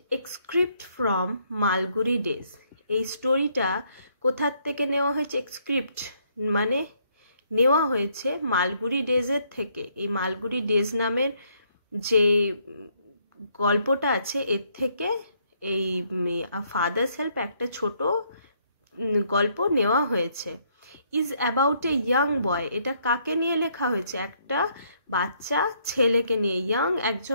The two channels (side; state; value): both; inverted; correlation -0.70